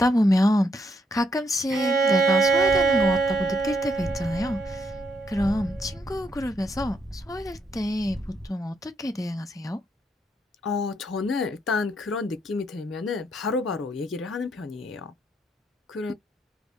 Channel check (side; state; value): both; normal; correlation 0.75